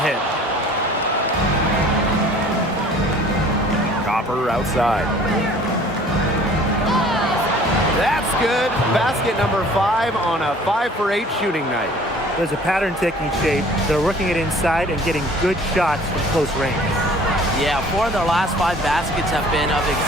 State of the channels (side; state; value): both; normal; correlation 0.51